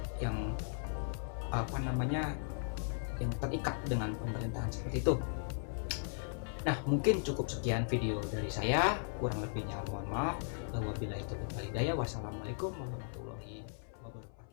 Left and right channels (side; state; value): right; silent; 53 dB below the other